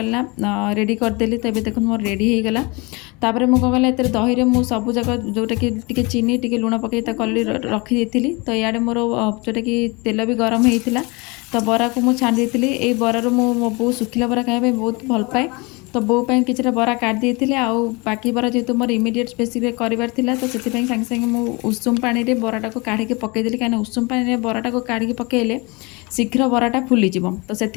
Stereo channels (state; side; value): quieter; right; 27.1 dB